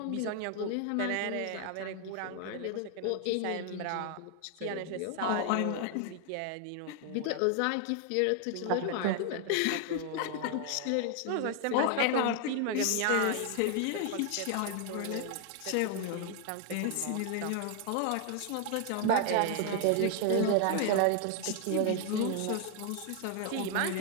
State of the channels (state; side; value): different; both; correlation 0.00